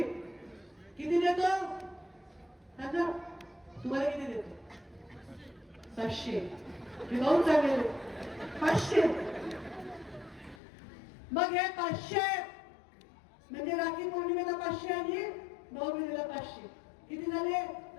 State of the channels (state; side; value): drops out; right; at 10.6 s